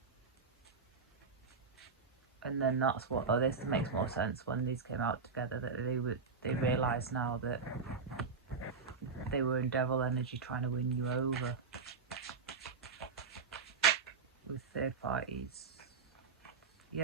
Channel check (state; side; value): quieter; left; 5.0 dB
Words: And then that's what, oh, this makes more sense when these came out together, that they realised now that they were in devil energy trying to win you over with third parties.